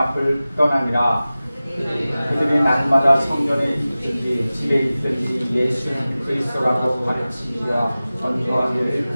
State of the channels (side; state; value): both; inverted; correlation -0.97